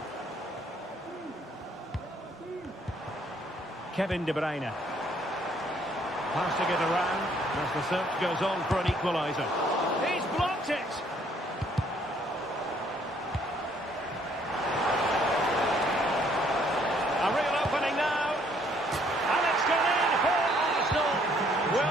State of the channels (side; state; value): both; normal; correlation 0.65